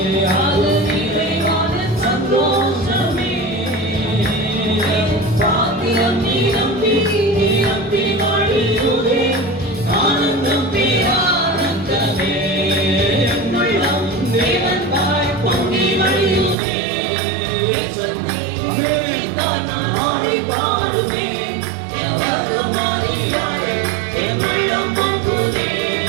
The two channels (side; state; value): left; drops out; at 16.6 s